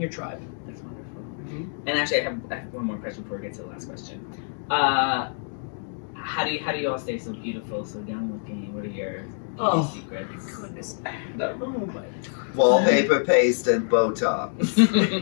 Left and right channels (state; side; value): silent; right; digital silence